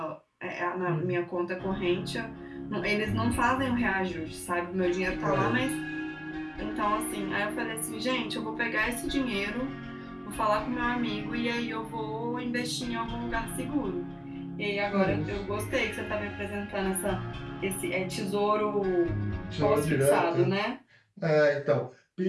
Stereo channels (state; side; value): identical; both; correlation 1.00